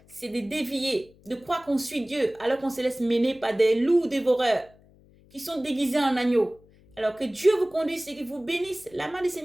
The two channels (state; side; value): noise; left; hum, 28 dB below the sound